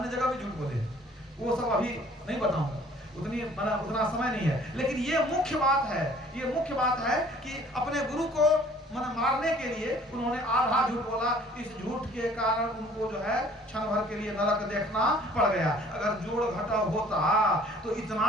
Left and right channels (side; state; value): both; normal; correlation 0.54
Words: जगह भी झूठ बोले हैं, वो सब अभी नहीं बताऊंगा, उतना समय नहीं है। लेकिन ये मुख्य बात है, ये मुख्य बात है कि अपने गुरु को मारने के लिए उन्होंने आधा झूठ बोला। इस झूठ के कारण उनको जो है क्षण भर के लिए नरक देखना पड़ गया। अगर जोड़ घटा होता तो